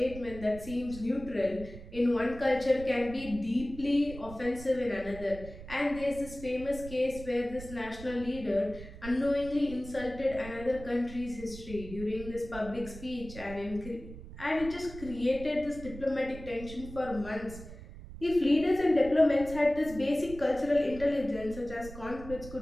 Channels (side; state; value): right; noise; rumble, 13 dB below the sound